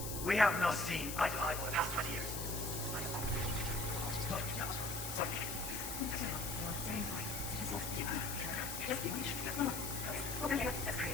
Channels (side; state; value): left; noise; hiss, 5 dB below the sound